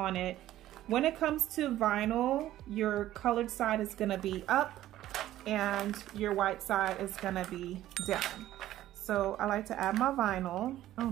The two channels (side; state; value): left; quieter; 13.9 dB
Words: it. When it comes to vinyl, your colored side is gonna be up and your white side is gonna be down. So I like to add my vinyl. I